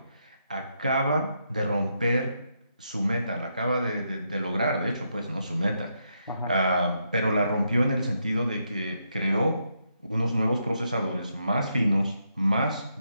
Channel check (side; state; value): both; inverted; correlation -0.80